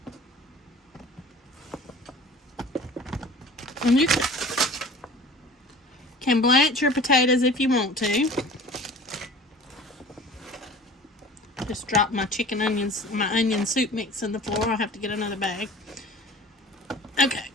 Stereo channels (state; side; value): normal; both; correlation 0.43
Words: And you can blanch your potatoes if you want to. Just dropped my my onion soup mix in the floor. I'll have to get another bag. Okay.